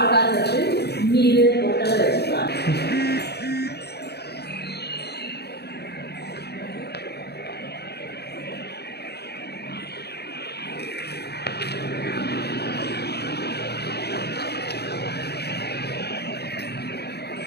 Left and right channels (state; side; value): late; right; 0.48 ms